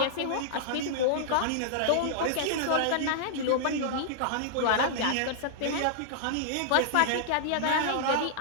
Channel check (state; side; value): different; both; correlation -0.01